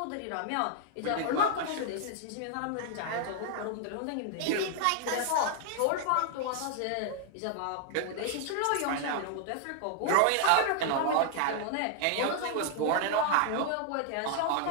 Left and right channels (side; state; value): both; different; correlation 0.00